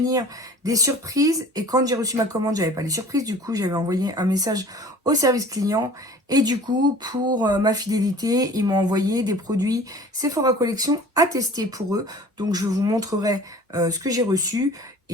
des surprises. Et quand j'ai reçu ma commande, j'avais pas les surprises. Du coup, j'avais envoyé un message au service client. Et du coup, pour ma fidélité, ils m'ont envoyé des produits Sephora Collection à tester pour eux. Donc, je vous montrerai ce que j'ai reçu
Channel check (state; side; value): normal; both; correlation 0.46